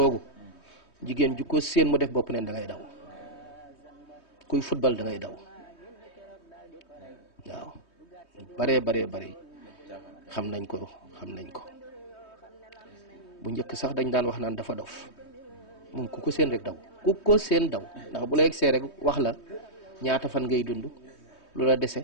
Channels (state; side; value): late; right; 3.2 ms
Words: jigéen ju ko séen mu def bopp neen da ngay daw kuy football da ngay daw waaw bare xam nañ ko bu njëkk sax dañ daan wax naan dafa dof moom ku ko séen rek daw ku ko séen daw ndax bu la egsee rek wax la ñaata fan ngay dund lu la dese